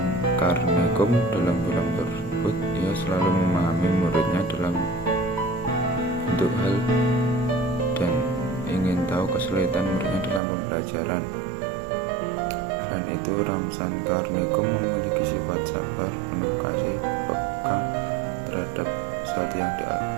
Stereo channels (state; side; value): drops out; left; at 10.4 s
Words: Karnikum dalam film tersebut, ia selalu memahami muridnya dalam bentuk hal dan ingin tahu kesulitan muridnya dalam pembelajaran. Selain itu, Ramsan Karnikum memiliki sifat sabar, penuh kasih, peka terhadap sesuatu yang